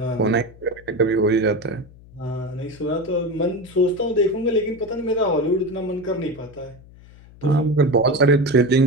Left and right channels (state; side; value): noise; left; hum, 22 dB below the sound